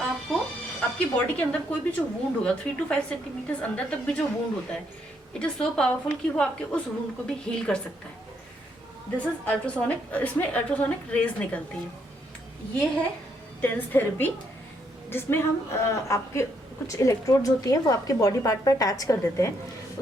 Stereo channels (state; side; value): normal; both; correlation 0.74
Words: आपकी बॉडी के अंदर कोई भी जो वुंड होगा 3 to 5 सेंटीमीटर अंदर तक भी जो वुंड होता है, इट इज सो पावरफुल कि वो आपके उस वुंड को भी हील कर सकता है। दिस इज अल्ट्रासोनिक, इसमें अल्ट्रासोनिक रेज निकलती हैं। ये है टेंस थेरेपी, जिसमें हम आपके कुछ इलेक्ट्रोड्स होती हैं वो आपके बॉडी पार्ट पर अटैच कर देते हैं।